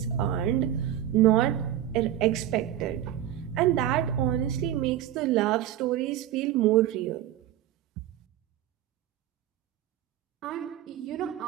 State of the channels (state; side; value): quieter; left; 11.7 dB